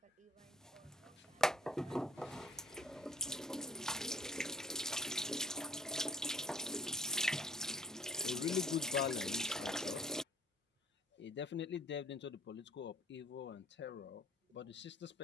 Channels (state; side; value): normal; both; correlation 0.57